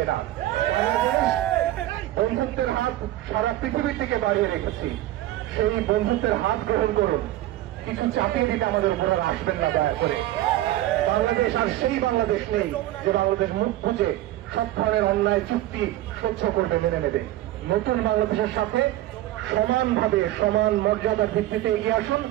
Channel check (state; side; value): quieter; left; 15.0 dB